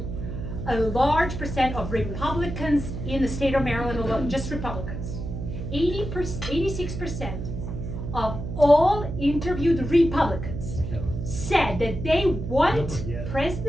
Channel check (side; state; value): right; noise; hum, 6 dB below the sound